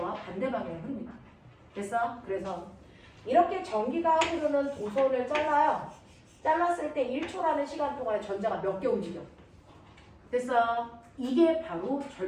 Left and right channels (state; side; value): identical; both; correlation 1.00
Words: 반대 방향의 흐름이다. 됐어? 그래서 이렇게 전기가 흐르는 도선을 잘라요. 잘랐을 때 1초라는 시간 동안에 전자가 몇 개 움직여. 됐어? 이게 바로